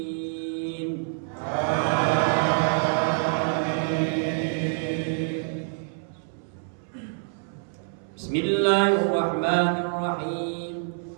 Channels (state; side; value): silent; left; 61 dB below the other